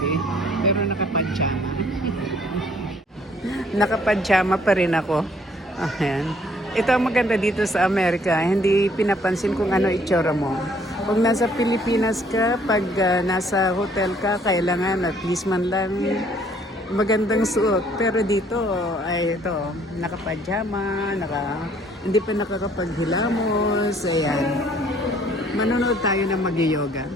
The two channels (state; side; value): normal; both; correlation 0.61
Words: pero nakapadjama. Nakapadjama pa rin ako. Ayan. Ito ang maganda dito sa Amerika, hindi pinapansin kung ano itsura mo. Kung nasa Pilipinas ka, pag nasa hotel ka, kailangan at least man lang magandang suot. Pero dito ay ito, nakapajama, hindi pa nakakapaghilamos. Ayan. Manonood tayo ng mag-yoga.